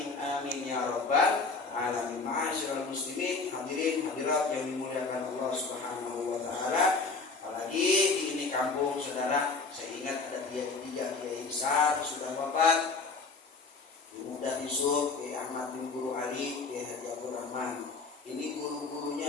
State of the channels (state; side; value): quieter; right; 4.2 dB